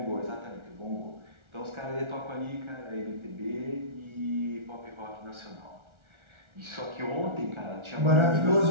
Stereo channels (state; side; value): late; left; 1.4 ms